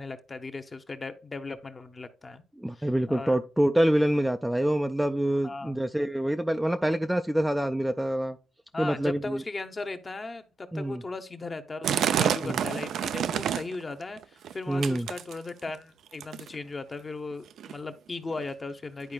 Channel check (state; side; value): normal; both; correlation 0.91